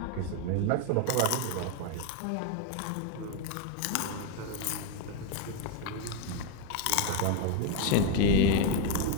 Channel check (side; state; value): both; different; correlation 0.01